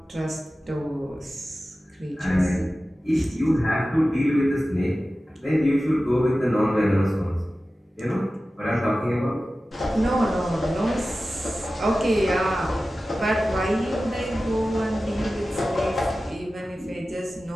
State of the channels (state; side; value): normal; both; correlation 0.95